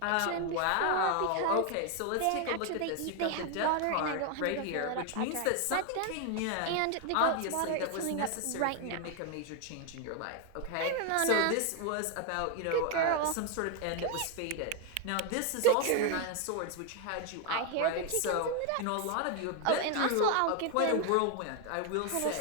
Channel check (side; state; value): both; different; correlation 0.01